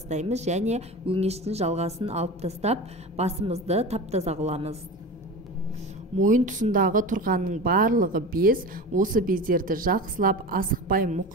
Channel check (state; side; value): normal; both; correlation 0.30